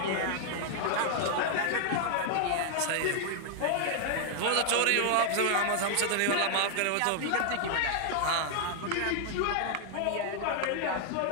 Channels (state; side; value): different; both; correlation 0.00